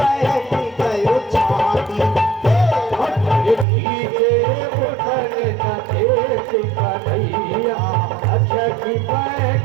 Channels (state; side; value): drops out; left; at 3.7 s